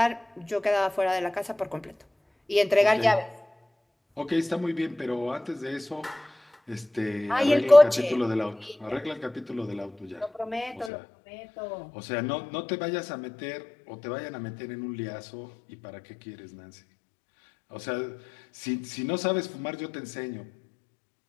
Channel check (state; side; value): drops out; right; at 10.9 s